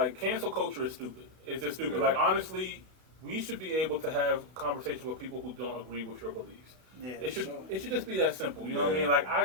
cancel culture is stupid. It's just stupid. Yeah. Like, honestly, we should be able to have conversations with people who don't agree with your beliefs. Yeah, It should sure. it should just be that simple. You know what I Yeah. mean?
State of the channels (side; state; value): left; late; 31 ms